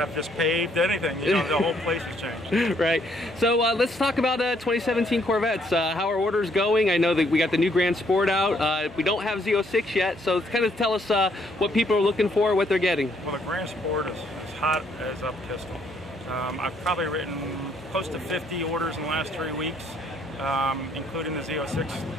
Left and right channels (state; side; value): normal; both; correlation 0.69